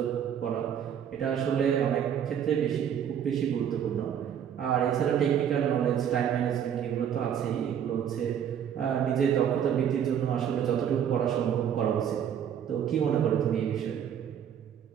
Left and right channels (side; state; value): left; quieter; 8.9 dB